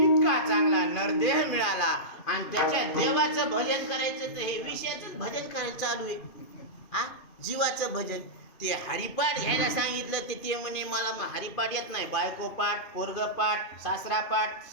इतका चांगला नरदेह मिळाला आणि त्याच्या देवाचं भजन करायचं, तर हे विषयाचं भजन करायचं चालू आहे. हा जीवाचं भजन. ते हरिपाठ घ्यायला सांगितलं, ते म्हणे मला हरिपाठ येत नाही, बायको पाठ, पोरग पाठ, सासरा पाठ,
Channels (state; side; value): late; right; 2.4 ms